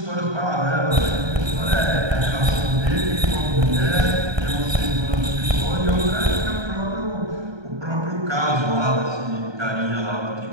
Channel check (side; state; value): left; late; 1.3 ms